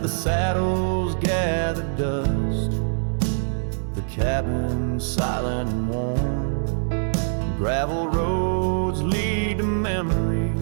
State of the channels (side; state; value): left; silent; digital silence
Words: saddles gather dust, the cabin silent and warm, gravel roads lead to